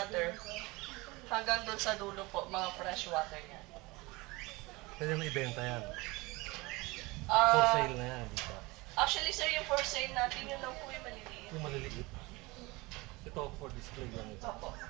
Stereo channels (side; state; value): left; quieter; 23.3 dB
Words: Hanggang doon sa dulo po, mga freshwater yan. Pwede mo ibenta yan. For Ah, sale na yan, di ba? actually, sir, yung for sale natin, yun lang po yung maliliit. Yung maliliit. Ito, for display lang ito. Opo.